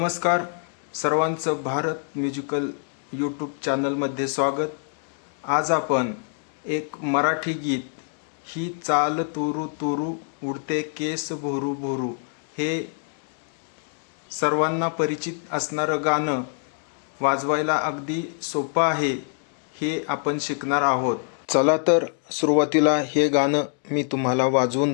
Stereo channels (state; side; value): silent; right; 62 dB below the other